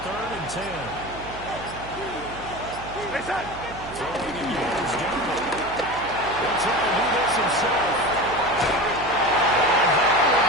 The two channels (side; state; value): right; noise; hum, 15 dB below the sound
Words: 3rd and 10. Throwing in yards down. He'll try to do this himself.